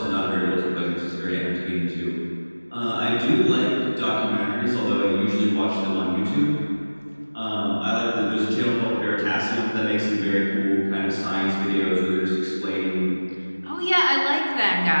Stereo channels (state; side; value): inverted; both; correlation -1.00